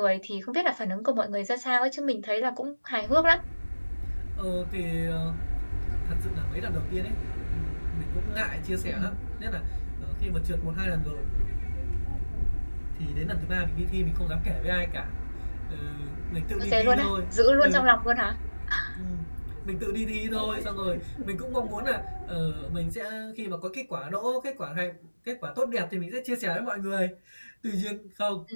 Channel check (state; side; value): inverted; both; correlation -1.00